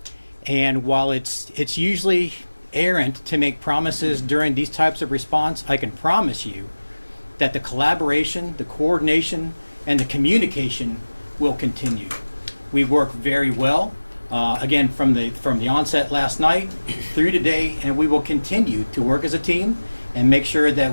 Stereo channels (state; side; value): inverted; both; correlation -1.00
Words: And while it's usually errant to make promises during these types of response, I can promise you that the collaboration, the coordination, and the communication will continue. We work very well. again, from the onset last night through today, and we will continue to work as a team and make sure that